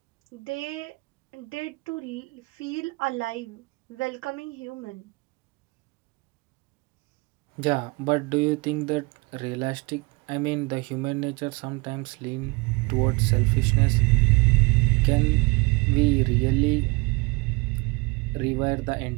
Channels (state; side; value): quieter; left; 27.0 dB